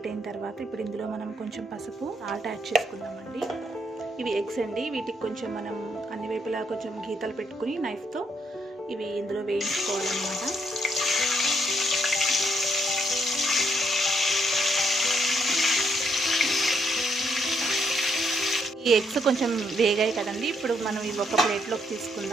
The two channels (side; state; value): both; normal; correlation 0.74